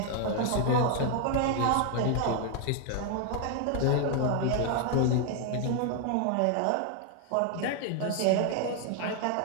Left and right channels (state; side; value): different; both; correlation 0.00